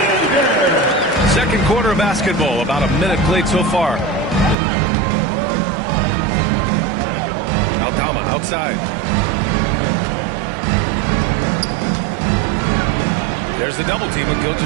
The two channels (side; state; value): left; drops out; at 4.5 s